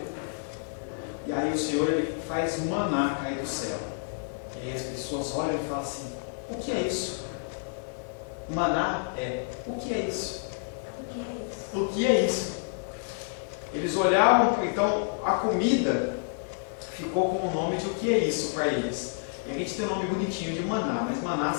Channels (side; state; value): right; silent; digital silence